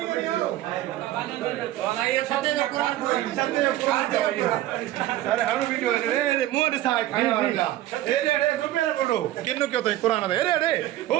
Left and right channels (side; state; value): left; quieter; 14.6 dB